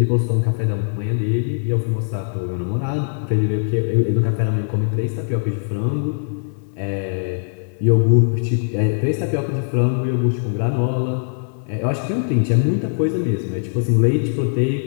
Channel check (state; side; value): silent; right; 60 dB below the other